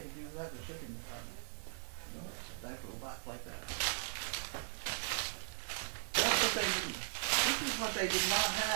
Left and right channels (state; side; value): silent; left; digital silence